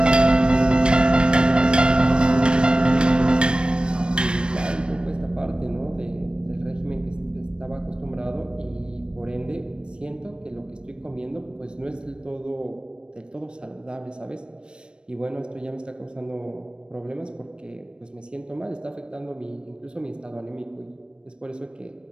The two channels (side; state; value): left; late; 0.054 ms